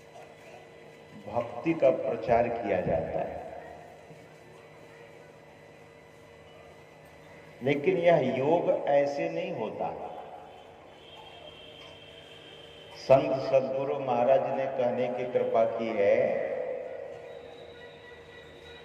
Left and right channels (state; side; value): identical; both; correlation 1.00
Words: भक्ति का प्रचार किया जाता है। लेकिन यह योग ऐसे नहीं होता। संत सद्गुरु महाराज ने कहने की कृपा की है